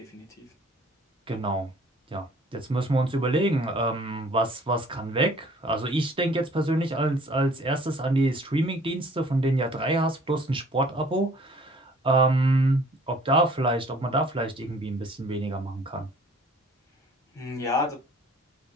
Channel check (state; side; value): normal; both; correlation 0.54